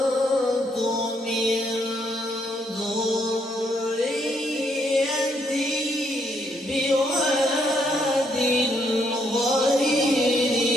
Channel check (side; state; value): both; normal; correlation 0.73